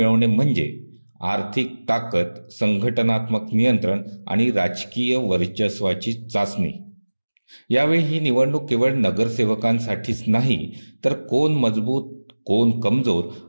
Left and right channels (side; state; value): both; inverted; correlation -1.00